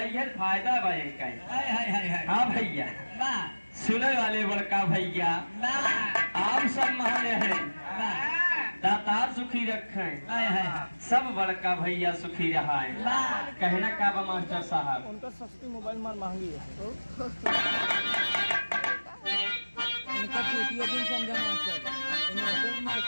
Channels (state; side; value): inverted; both; correlation -1.00